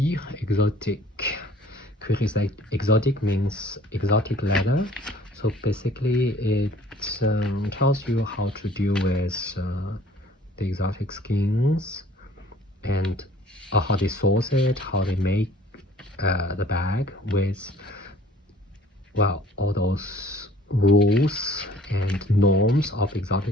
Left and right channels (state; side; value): normal; both; correlation 0.53